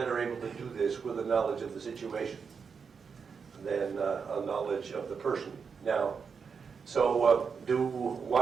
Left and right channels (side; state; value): left; quieter; 5.9 dB